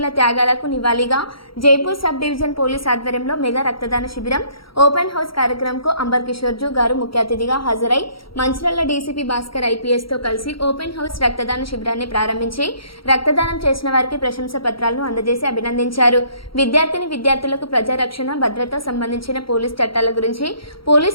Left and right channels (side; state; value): right; late; 0.74 ms